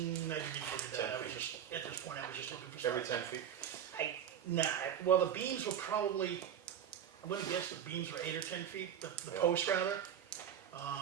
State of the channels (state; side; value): quieter; left; 9.3 dB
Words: look at that. I was just, at this point, I was just looking for stuff. Every 10 feet? Well, the beams were probably, I'm gonna guess the beams were 8 or 10 feet, the Yeah. post rather.